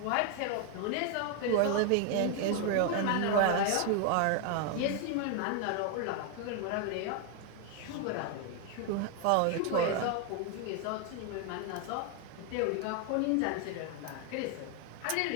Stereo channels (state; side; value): different; both; correlation 0.01